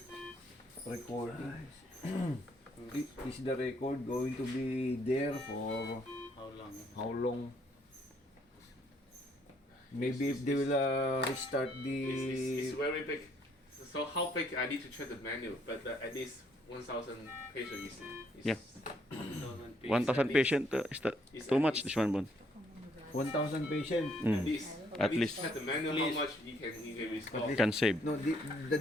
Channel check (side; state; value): both; normal; correlation 0.68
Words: recording. Is the record going to be there for How long? how long? Maybe if they will restart It's the very big. So how big I need to check the menu, but at least 1,000 pages is Yeah. 1,000 1,000 patient is that It's too at much? least- This one, Bon. 1,000 patient. At least. I At need least to check the menu how much you can restore. can save. No, the